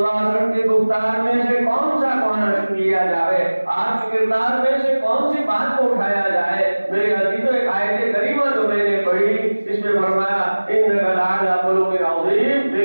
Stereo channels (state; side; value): inverted; both; correlation -1.00